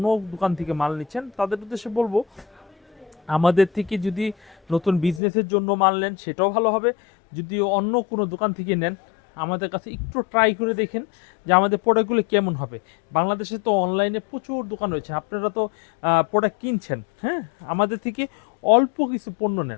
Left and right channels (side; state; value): right; drops out; at 5.2 s